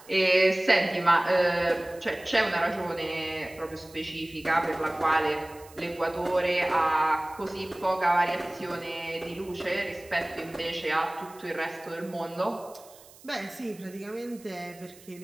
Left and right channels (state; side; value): noise; right; hiss, 23 dB below the sound